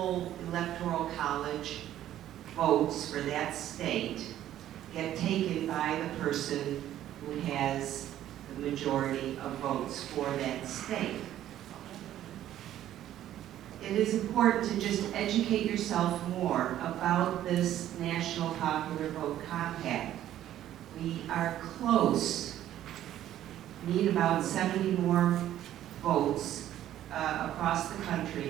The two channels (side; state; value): left; quieter; 12.3 dB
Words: electoral college votes for that state get taken by the person who has the majority of votes for that state. It is important to just educate yourself more about this National Popular Vote Compact. We are close, need about 70 more votes across the